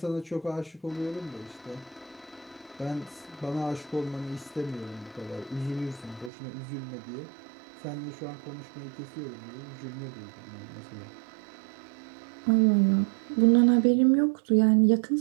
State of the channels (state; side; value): drops out; left; at 6.3 s